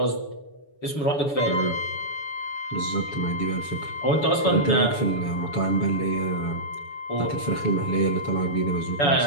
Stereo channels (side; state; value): right; late; 7.0 ms